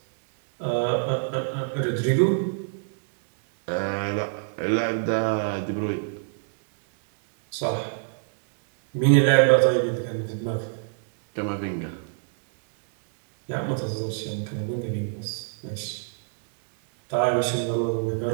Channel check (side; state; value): left; silent; digital silence